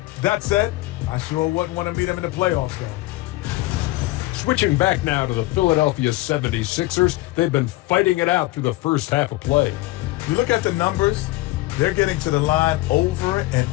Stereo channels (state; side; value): quieter; right; 18.9 dB